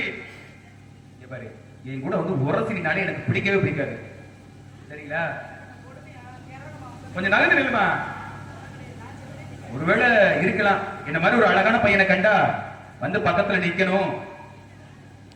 பாரு, என் கூட வந்து உரசினாலே எனக்கு பிடிக்கவே பிடிக்காது. சரிங்களா? கொஞ்சம் நகர்ந்து நில்லுமா. ஒருவேளை இருக்கலாம், என்ன மாதிரி ஒரு அழகான பையனை கண்டா வந்து பக்கத்துல நிக்கணும்,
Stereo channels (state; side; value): identical; both; correlation 1.00